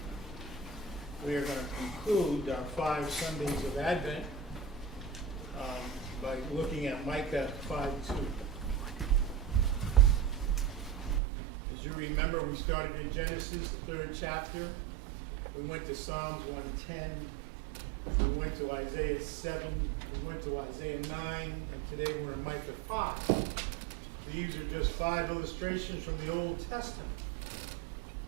we are going to conclude our 5 Sundays of Advent by looking at Micah 5:2. As you remember, we started in Genesis, the 3rd chapter. We went to Psalms 110. We went to Isaiah 7. We went to Isaiah 9. And today we're in Micah 5. These are just 5 illustrations from the Old Testament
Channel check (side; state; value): left; drops out; at 11.2 s